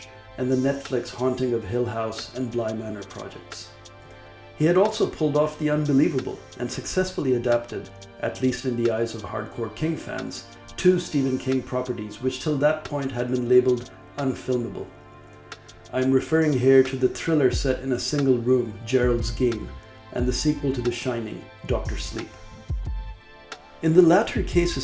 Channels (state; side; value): identical; both; correlation 1.00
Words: and the Netflix Haunting of Hill House and Bly Manor projects. He had also pulled off the unbelievable and successfully adapted, at least in the eyes of hardcore King fans, two Stephen King properties which till that point had been labeled unfilmable. I'm referring here to the thriller set in a single room, Gerald's Game, and the sequel to The Shining, Dr. Sleep. In the latter case